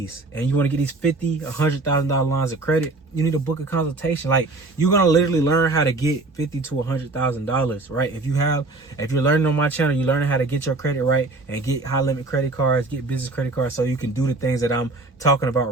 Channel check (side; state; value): left; quieter; 3.3 dB